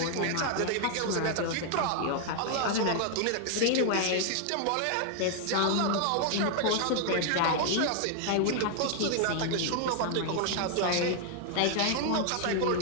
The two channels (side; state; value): both; different; correlation 0.00